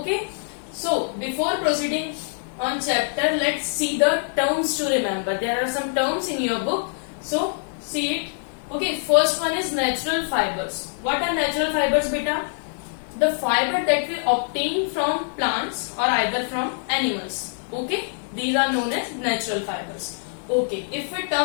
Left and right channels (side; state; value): right; silent; digital silence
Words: So before proceeding on chapter, let's see the terms to remember. There are some terms in your book. So see it. Okay, first one is natural fibers. What are natural fibers, beta? The fiber that we obtain from plants or either from animals. Okay, these are known as natural fibers. Okay, if we